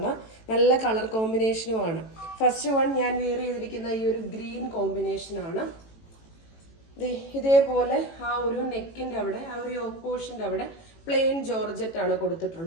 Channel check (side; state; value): right; late; 18 ms